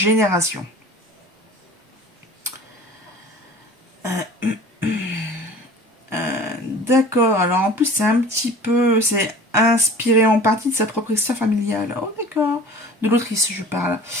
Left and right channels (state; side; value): normal; both; correlation 0.43